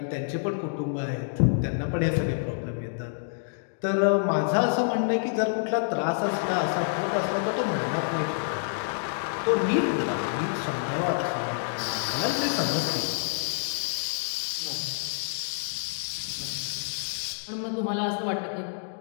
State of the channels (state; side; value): silent; right; digital silence